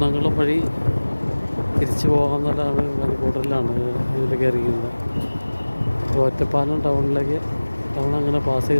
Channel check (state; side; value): inverted; both; correlation -1.00